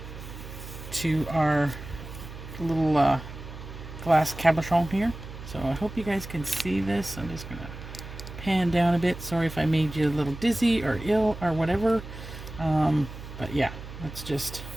to our little glass cabochon here. So I hope you guys can see this. I'm just going to pan down a bit. Sorry if I made you a little dizzy or ill or whatever. But yeah, let's just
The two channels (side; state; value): right; noise; hum, 12 dB below the sound